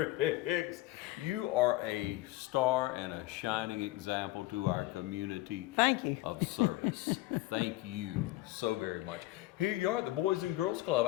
you are a star and a shining example to our community. Thank you. Of service. Thank you so very much. Here you are at the Boys and Girls Club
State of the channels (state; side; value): quieter; right; 17.8 dB